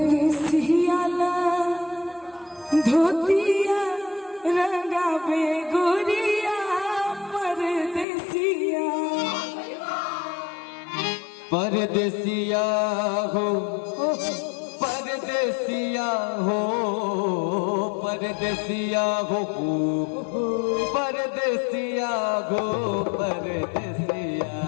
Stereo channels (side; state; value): right; drops out; at 8.1 s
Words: धोतिया रंगावे गोरिया परदेसिया परदेसिया हो परदेसिया हो परदेसिया हो परदेसिया हो परदेसिया